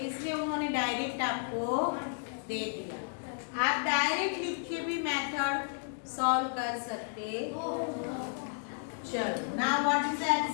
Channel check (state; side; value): silent; right; digital silence